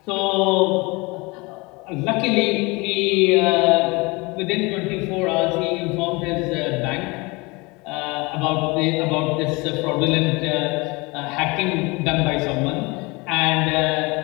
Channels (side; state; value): right; quieter; 25.6 dB